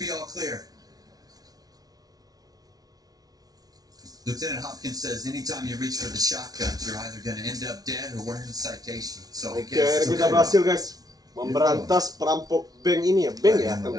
be all clear. Lieutenant Hopkins says anytime you reach for the shotgun, you're either going to end up dead or wearing a citation. So I Oke, guess kita berhasil guys memberantas perampok bank ini ya, bank ya kalau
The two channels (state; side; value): late; left; 0.18 ms